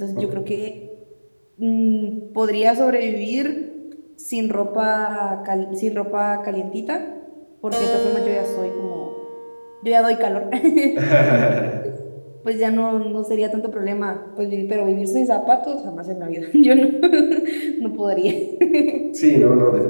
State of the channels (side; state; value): both; inverted; correlation -1.00